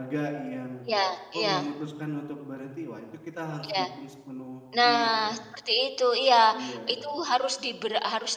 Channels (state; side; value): identical; both; correlation 1.00